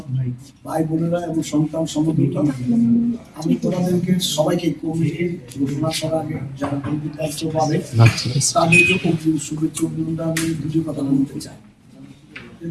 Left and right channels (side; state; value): both; identical; correlation 1.00